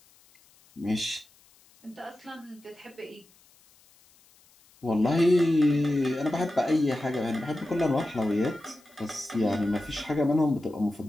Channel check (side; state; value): left; noise; hiss, 30 dB below the sound